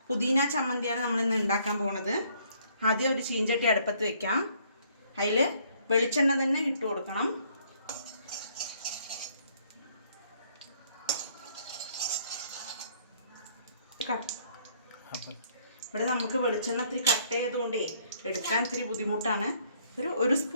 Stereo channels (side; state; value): both; inverted; correlation -0.64